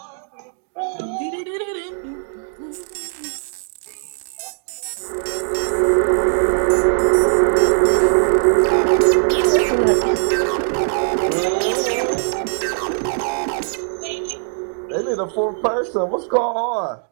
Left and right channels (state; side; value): silent; left; digital silence